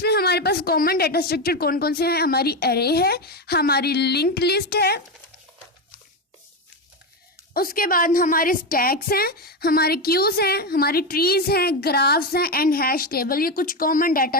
हमारे पास कॉमन डाटा स्ट्रक्चर कौन कौन से हैं, हमारी एरे है, हमारी लिंक्ड लिस्ट है, उसके बाद हमारे स्टैक्स हैं, हमारे क्यूज हैं, हमारी ट्रीज हैं, ग्राफ्स हैं एंड हैश टेबल। ये कुछ कॉमन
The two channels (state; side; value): normal; both; correlation 0.12